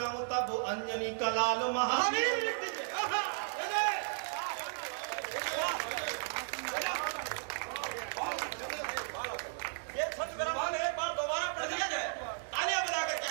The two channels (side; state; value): left; silent; digital silence